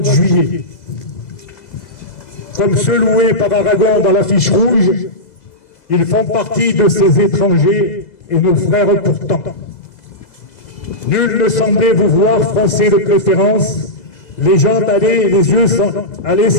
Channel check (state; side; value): late; right; 2.0 ms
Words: juillet. Comme ceux loués par Aragon dans l'affiche rouge, ils font partie de ces étrangers et nos frères pourtant. Nul ne semblait vous voir français de préférence, les gens allaient